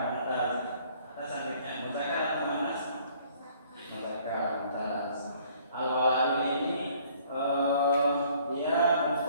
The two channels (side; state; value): both; inverted; correlation -0.59